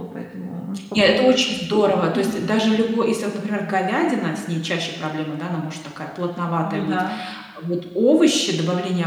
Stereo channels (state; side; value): identical; both; correlation 1.00